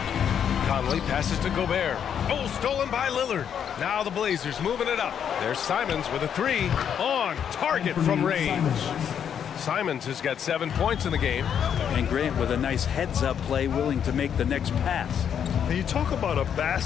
Conley passes to Gobert. Oh, stolen by Lillard. Now the Blazers moving it up. There's Simons with a 3 on target from range. Simons has got 7 points in the game. And Grant with a nice heads-up play, willing to make the next pass. And you talk about a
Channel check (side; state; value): right; quieter; 8.4 dB